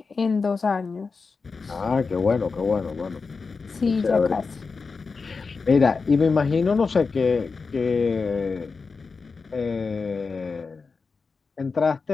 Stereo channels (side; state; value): right; quieter; 4.6 dB